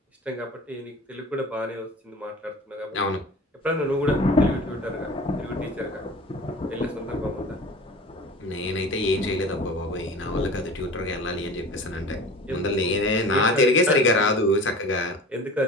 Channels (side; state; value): both; normal; correlation 0.39